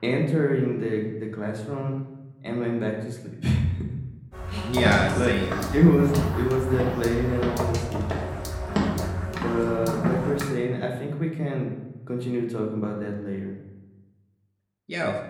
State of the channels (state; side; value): identical; both; correlation 1.00